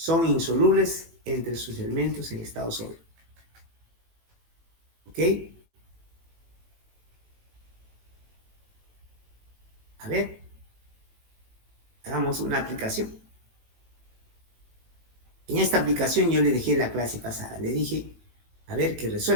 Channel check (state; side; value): late; left; 18 ms